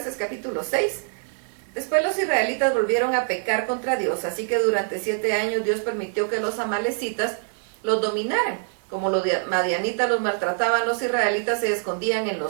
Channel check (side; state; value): left; silent; 62 dB below the other